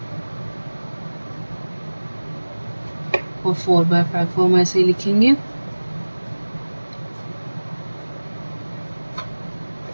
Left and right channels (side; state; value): both; inverted; correlation -1.00